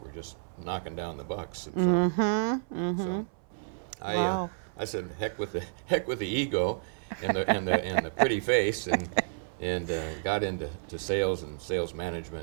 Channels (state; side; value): silent; left; 57 dB below the other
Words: just knocking down the bucks. And so, Wow. I said, heck with the ego and the pretty face, and got into sales and sales